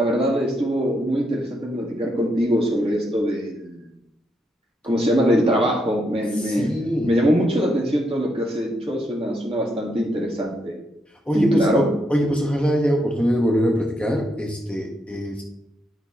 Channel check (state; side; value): normal; both; correlation 0.79